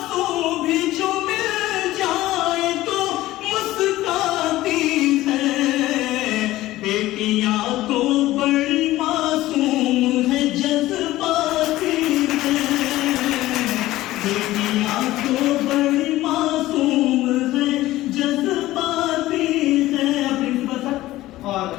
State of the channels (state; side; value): quieter; right; 16.4 dB